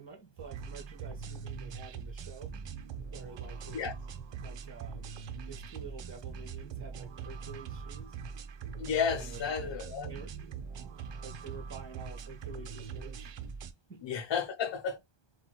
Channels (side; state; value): right; late; 1.2 ms